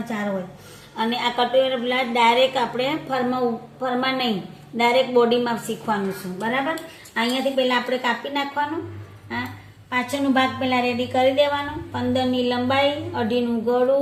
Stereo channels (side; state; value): both; identical; correlation 1.00